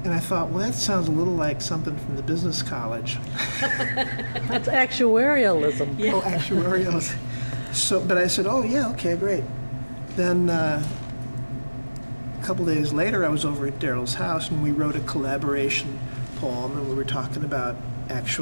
And I thought, well, that sounds a little like something from the business college. That's actuarialism. Yeah. Oh, actuarialism. So, but I said, oh, yeah, okay, great. Then a couple days later, I was over at Darrell's house, and we wrote a collaboration poem, and we were talking about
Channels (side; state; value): both; inverted; correlation -1.00